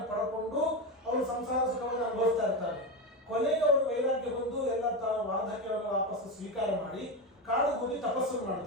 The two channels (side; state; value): both; normal; correlation 0.16